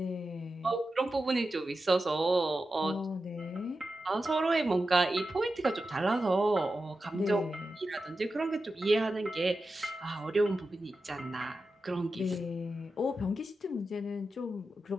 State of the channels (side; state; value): both; normal; correlation 0.91